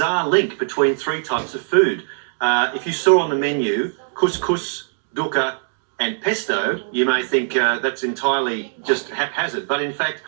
link between three types of food. If you saw on the menu couscous, dukkha, and pesto, you may think that's entirely just haphazard. But in fact,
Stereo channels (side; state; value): left; silent; digital silence